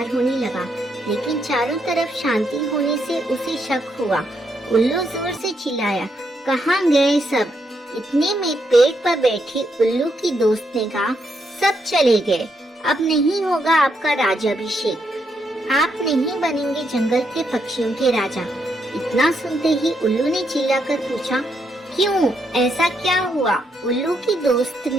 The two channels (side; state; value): both; normal; correlation 0.78